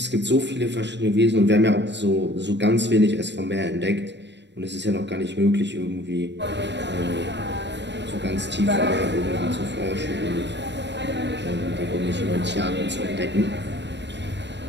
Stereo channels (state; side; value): late; left; 0.51 ms